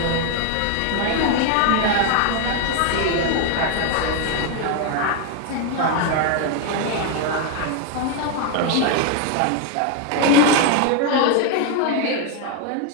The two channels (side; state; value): both; different; correlation 0.01